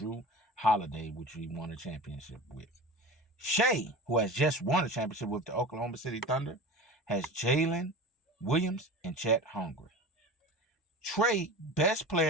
Holiday, which he won a championship with. Shea, who has just won a championship with the Oklahoma City Thunder, has Jalen Williams and Chet Holmgren. Trae, best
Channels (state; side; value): normal; both; correlation 0.33